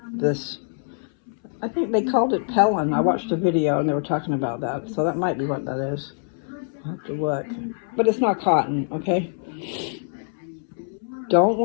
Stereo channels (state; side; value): silent; right; 61 dB below the other